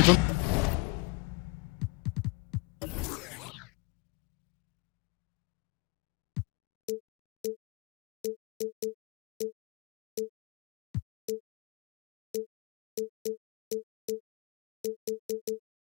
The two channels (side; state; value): right; quieter; 26.9 dB